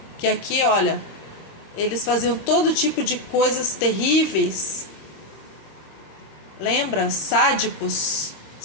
que aqui, olha, eles faziam todo tipo de coisas terríveis. Lembra? Sádicos,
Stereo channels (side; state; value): right; late; 25 ms